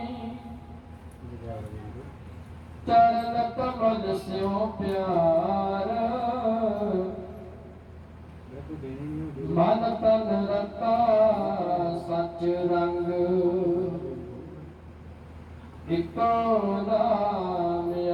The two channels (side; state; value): both; identical; correlation 1.00